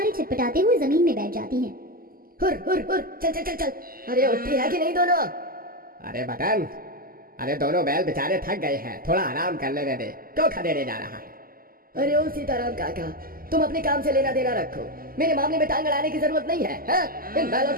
छटपटाते हुए जमीन में बैठ जाती हैं। हुर हुर हुर, चल चल चल चल। अरे उठती है कि नहीं दोनों? अरे मदन, अरे दोनों बैल बेचारे थक गए हैं, थोड़ा आराम कर लेने दे। क्यों खदेड़े जा रहा है? अरे ओ सीताराम काका, तुम अपने काम से लेना देना रखो। मेरे मामले में टांग अड़ाने की जरूरत नहीं है। हाँ? इन बैलों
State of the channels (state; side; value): late; left; 0.42 ms